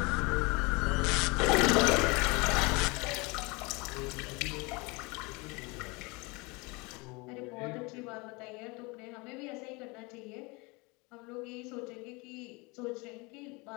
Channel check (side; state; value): right; quieter; 26.8 dB